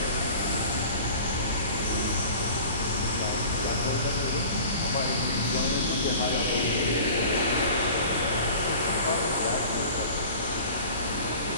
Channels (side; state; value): both; inverted; correlation -0.42